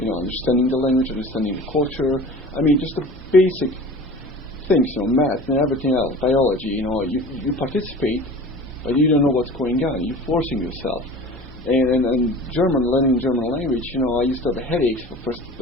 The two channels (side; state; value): both; normal; correlation 0.40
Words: Understanding the language, understanding the culture. I mean, just the basic things, math and everything else, biology. You participate, but you don't know what's going on. You're forcing yourself. And learning German language, I used to have headaches for the first